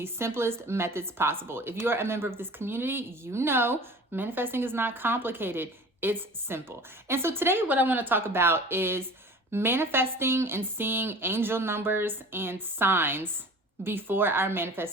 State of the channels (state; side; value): normal; both; correlation 0.41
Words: simplest methods possible. If you are a member of this community, you know manifesting is not complicated. It's simple. And so today what I want to talk about is manifesting and seeing angel numbers and signs before our